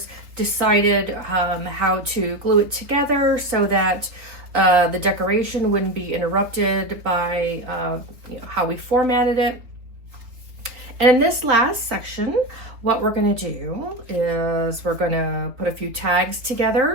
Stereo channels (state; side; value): late; left; 3.6 ms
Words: decided how to glue it together so that the decoration wouldn't be interrupted by how we formatted it. And in this last section, what we're going to do is we're going to put a few tags